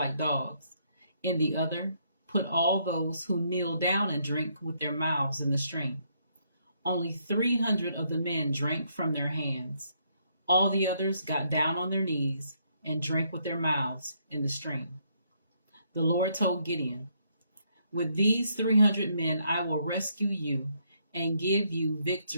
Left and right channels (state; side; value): inverted; both; correlation -0.73